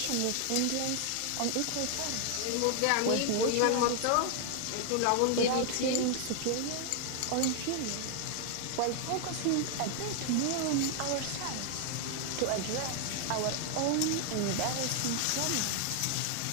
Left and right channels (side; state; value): both; different; correlation 0.00